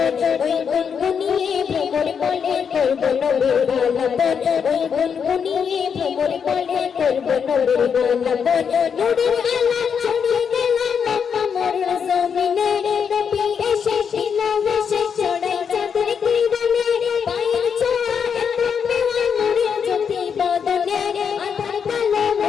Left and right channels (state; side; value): quieter; right; 6.9 dB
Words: ওই গুনগুনিয়ে ভ্রমর বলে করব নবীর আলাপ ওই গুনগুনিয়ে ভ্রমর বলে করব নবীর আলাপ নূরের আলো ছড়িয়ে দিল আমার জমিনে নবী এসে দিল ভেসে ছড়াই চাঁদের কিরণে পায়ের ছোঁয়া এত মেওয়া নূরের জ্যোতি বদনে আধার কালো